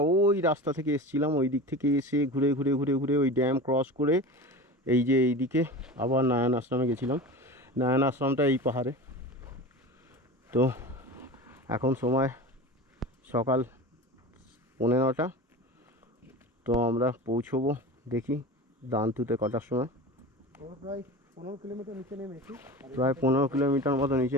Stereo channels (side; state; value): both; normal; correlation 0.31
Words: ওই রাস্তা থেকে এসেছিলাম, ওই দিক থেকে এসে ঘুরে ঘুরে ঘুরে ঘুরে ওই ড্যাম ক্রস করে এই যে এইদিকে আবার নারায়ণ আশ্রমে গেছিলাম। নারায়ণ আশ্রমটা এই পাহাড়ে। তো এখন সময় সকাল 9:30। তো আমরা পৌঁছবো দেখি দান্তুতে কটার সময়। প্রায় 15 কিলোমিটার নিচে নেমেছি। প্রায় 15 কিলোমিটার মতো নিচে